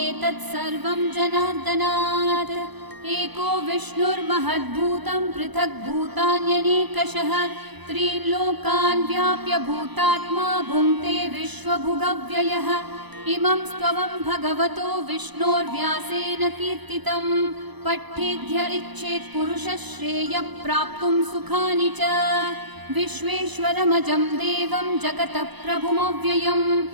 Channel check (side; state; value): left; late; 1.0 ms